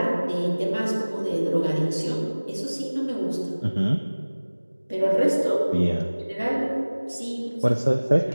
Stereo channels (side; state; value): both; inverted; correlation -1.00